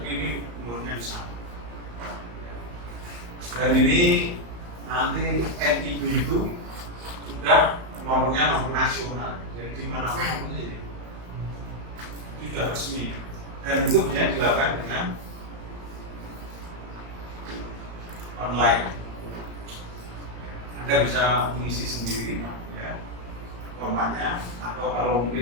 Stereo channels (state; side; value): late; left; 35 ms